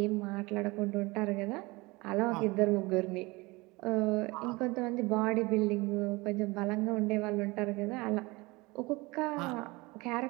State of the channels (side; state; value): left; quieter; 23.6 dB